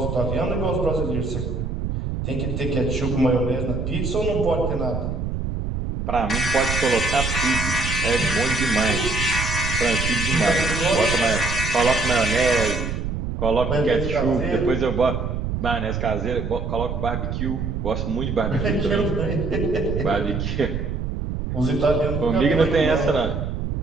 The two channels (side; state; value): right; noise; rumble, 3 dB below the sound